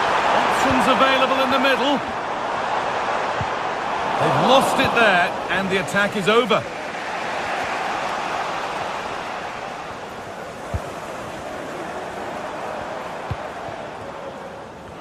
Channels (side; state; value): both; identical; correlation 1.00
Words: available in the middle. They've lost it there, and the attack is over.